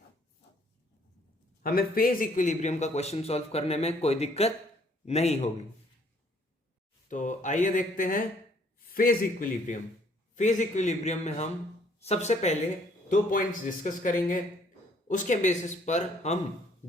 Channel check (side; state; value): both; normal; correlation 0.63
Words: हमें फेज इक्विलिब्रियम का क्वेश्चन सॉल्व करने में कोई दिक्कत नहीं होगी। तो आइए देखते हैं फेज इक्विलिब्रियम। फेज इक्विलिब्रियम में हम सबसे पहले 2 पॉइंट्स डिस्कस करेंगे, उसके बेसिस पर हम